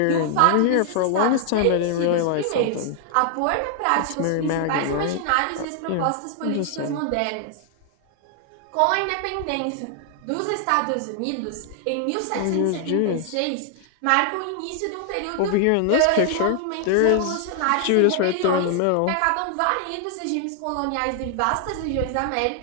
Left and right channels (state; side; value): different; both; correlation 0.00